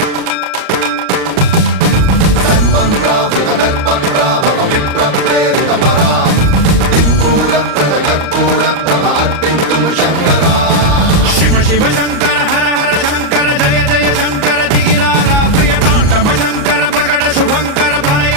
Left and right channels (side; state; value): left; late; 38 ms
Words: సన్మన్రావృత దర్ప ప్రాభవ విప్ర ప్రేరిత పరా దిక్పూర ప్రద కర్పూర ప్రభ అర్పింతుము శంకరా శివ శివ శంకర హర హర శంకర జయ జయ శంకర దిగిరారా ప్రియతాండవ శంకర ప్రకట శుభంకర ప్రళయ